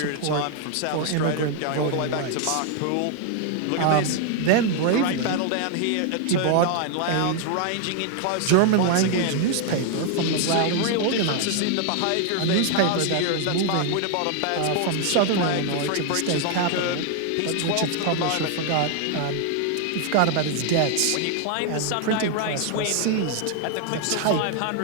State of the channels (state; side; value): different; both; correlation 0.00